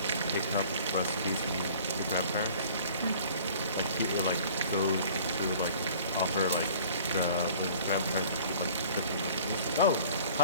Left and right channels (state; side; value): inverted; both; correlation -0.49